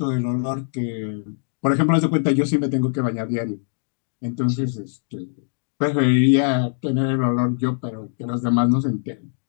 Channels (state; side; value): silent; right; digital silence